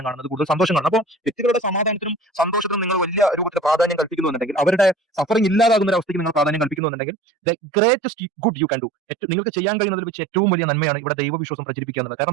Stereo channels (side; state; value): left; drops out; at 6.8 s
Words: കാണുന്നത്, കൂടുതൽ സന്തോഷം കാണുന്നത്. അപ്പോൾ വ്യക്തികളുടെ സമാധാനത്തിനും സന്തോഷത്തിനും നിങ്ങൾ വലിയ രൂപത്തിൽ പ്രാധാന്യം കൽപ്പിക്കുന്നുണ്ടെങ്കിൽ, അവരുടെ സഫറിംഗ് ഇല്ലാതാകുന്ന ഒരു അവസ്ഥയ്ക്ക് നിങ്ങൾ പ്രാധാന്യം കൽപ്പിക്കുന്നുണ്ടെങ്കിൽ, the greatest good you can do, നിങ്ങൾക്ക് ചെയ്യാൻ കഴിയുന്നതിൽ വെച്ച് ഏറ്റവും വലിയ നന്മയാണ് ഇവിടെ ദൈവവിശ്വാസം പ്രചരിപ്പിക്കുക എന്നുള്ളത്.